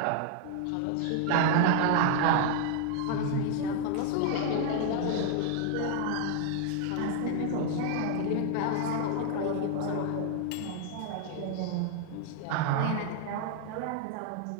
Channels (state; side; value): different; both; correlation 0.00